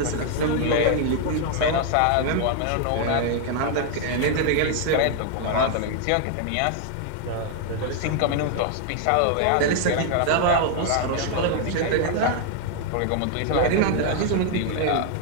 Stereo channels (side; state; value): both; different; correlation 0.00